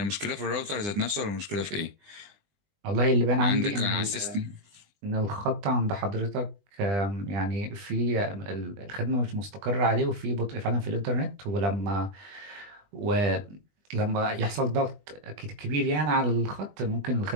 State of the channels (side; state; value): left; late; 20 ms